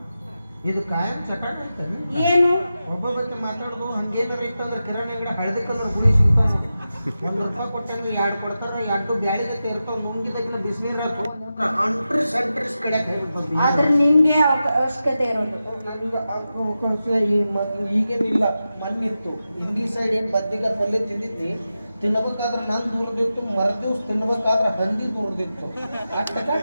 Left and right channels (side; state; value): both; inverted; correlation -0.92